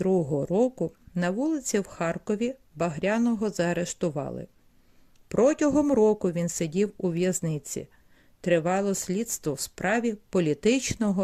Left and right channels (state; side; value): identical; both; correlation 1.00